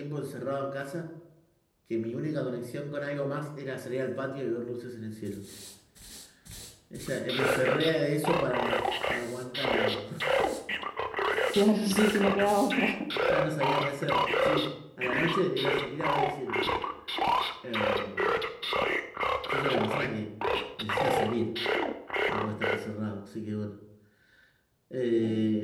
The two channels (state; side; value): identical; both; correlation 1.00